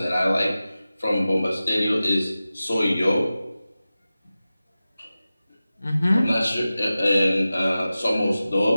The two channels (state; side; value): inverted; both; correlation -0.95